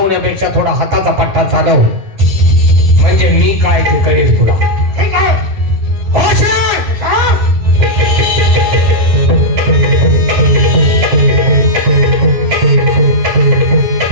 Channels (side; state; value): left; late; 9.9 ms